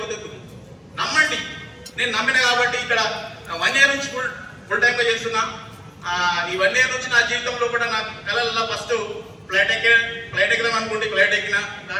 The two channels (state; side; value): identical; both; correlation 1.00